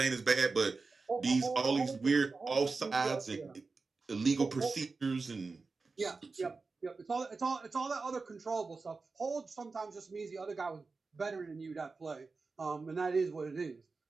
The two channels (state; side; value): quieter; left; 4.2 dB